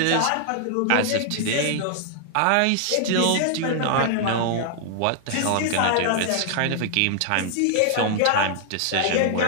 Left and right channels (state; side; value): different; both; correlation -0.01